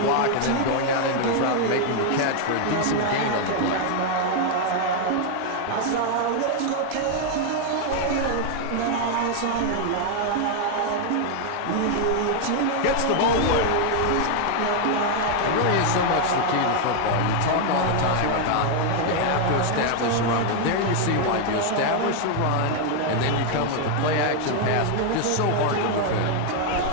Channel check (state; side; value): different; both; correlation 0.00